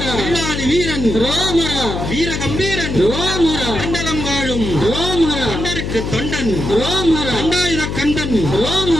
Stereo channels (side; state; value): left; noise; hum, 4 dB below the sound